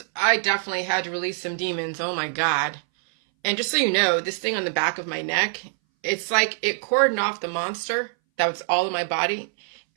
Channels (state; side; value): silent; left; 60 dB below the other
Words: I definitely had to release some demons. Oh my God. And just so you know, this thing on the back of my neck, it's like it cordoned off the monster that was all in my body.